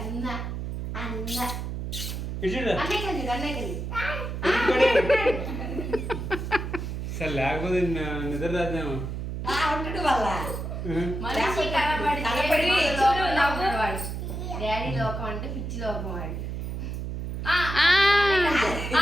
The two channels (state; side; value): noise; right; hum, 5 dB below the sound